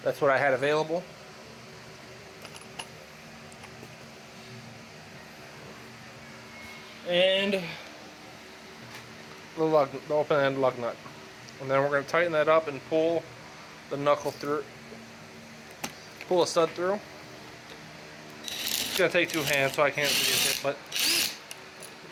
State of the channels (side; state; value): both; identical; correlation 1.00